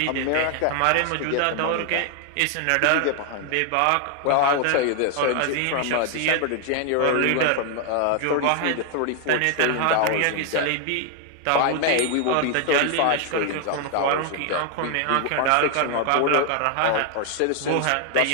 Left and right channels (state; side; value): different; both; correlation 0.00